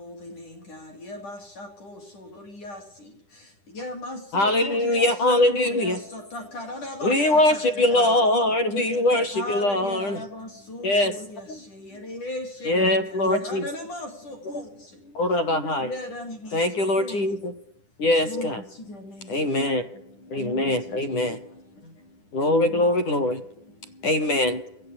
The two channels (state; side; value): late; right; 10 ms